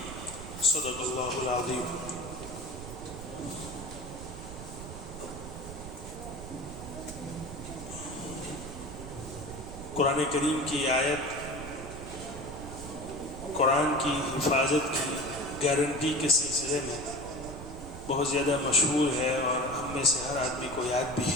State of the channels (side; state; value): right; noise; rumble, 11 dB below the sound